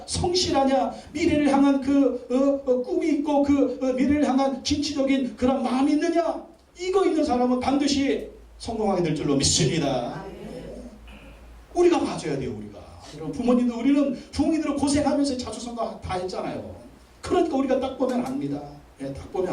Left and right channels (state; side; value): identical; both; correlation 1.00